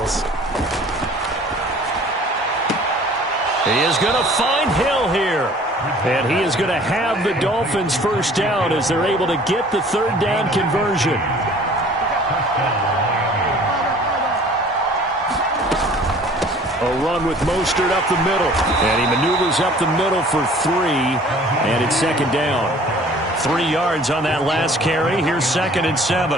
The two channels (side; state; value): both; normal; correlation 0.50